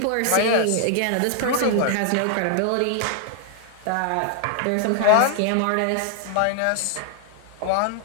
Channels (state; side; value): different; both; correlation 0.00